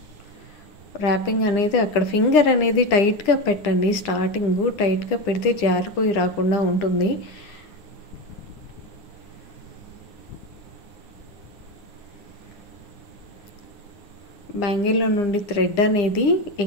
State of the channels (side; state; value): right; late; 9.9 ms